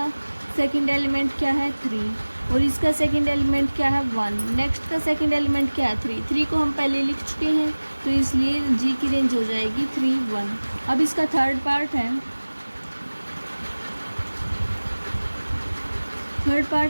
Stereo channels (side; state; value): both; inverted; correlation -1.00